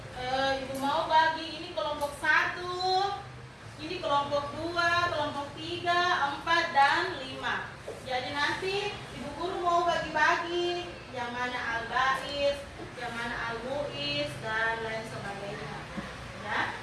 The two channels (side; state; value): both; identical; correlation 1.00